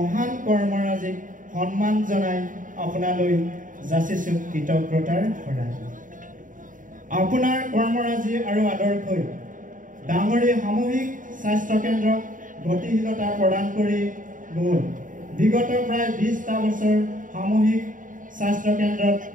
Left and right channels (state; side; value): late; left; 0.38 ms